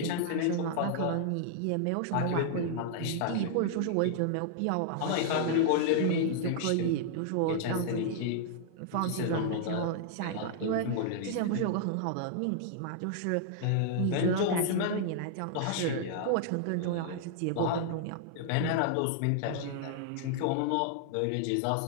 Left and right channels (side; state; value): both; different; correlation -0.01